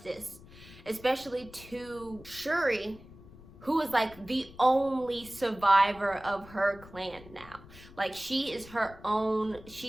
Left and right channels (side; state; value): left; noise; rumble, 20 dB below the sound